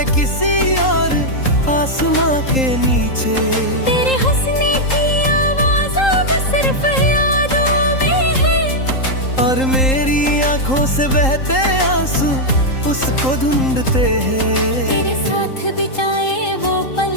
किसी और आसमां के नीचे। तेरे हंसने की आवाज़ अब सिर्फ यादों में है, और मेरी आंखों से बहते आंसू उसको ढूंढते हैं। तेरे साथ बिताए वो पल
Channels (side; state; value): right; late; 3.8 ms